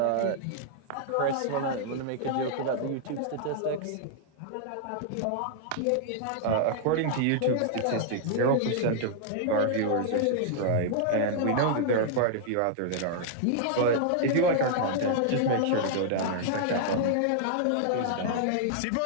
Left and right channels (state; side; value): different; both; correlation -0.01